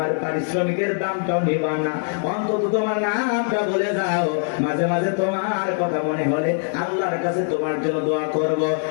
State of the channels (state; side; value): silent; right; 56 dB below the other